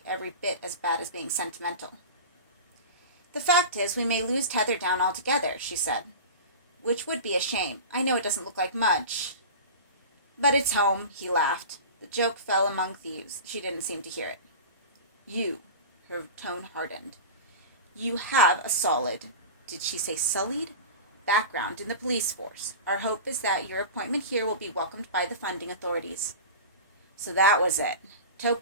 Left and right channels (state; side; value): inverted; both; correlation -0.31